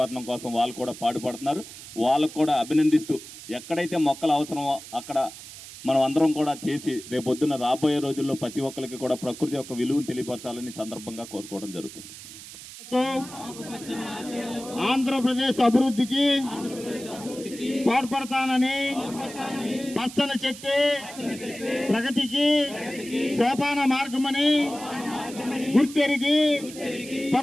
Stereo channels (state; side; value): noise; right; hiss, 14 dB below the sound